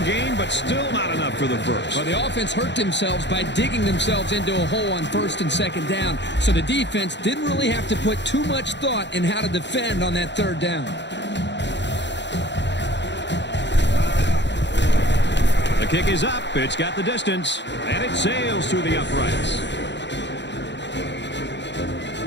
gain, but still not enough for the first. Well, the offense hurt themselves by digging themselves into a hole on first and second down, so the defense didn't really have to put too much thought in how to defend on that third down. The kick is up. It's got the distance, and it sails through the uprights.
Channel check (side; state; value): right; late; 0.52 ms